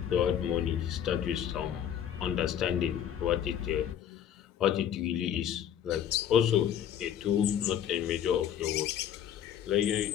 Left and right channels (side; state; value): right; quieter; 9.6 dB